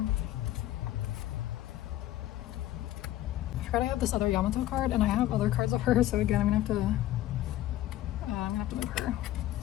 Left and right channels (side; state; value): right; quieter; 14.2 dB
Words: forgot I have this other Yamato card, and I have other cards of her, so again, I'm gonna have to move her.